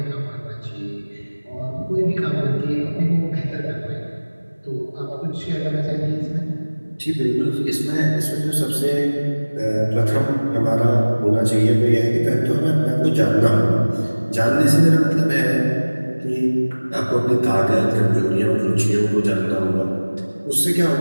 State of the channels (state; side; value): inverted; both; correlation -1.00